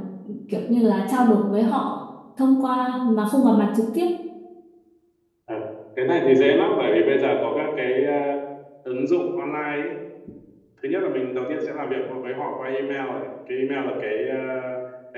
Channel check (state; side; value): identical; both; correlation 1.00